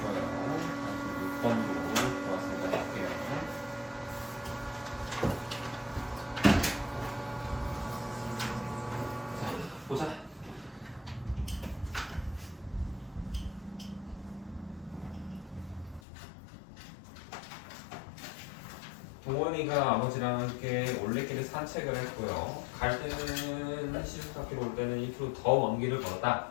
거예요. 46번으로 좋았습니다. 할게요. 자, 보자. 동원이가 아버지랑 함께 올레길을 산책을 했고요. 갈 때는 시속사키로 올 때는 1km 더 먼 길을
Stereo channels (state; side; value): drops out; right; at 16.0 s